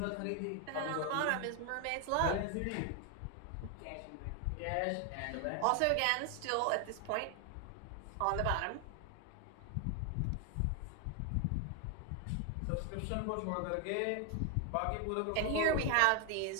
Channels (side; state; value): both; different; correlation 0.01